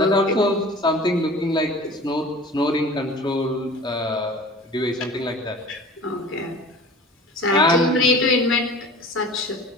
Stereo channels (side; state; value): both; normal; correlation 0.41